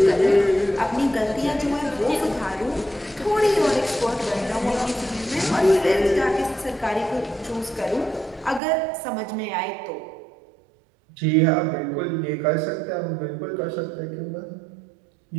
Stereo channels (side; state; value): left; drops out; at 8.6 s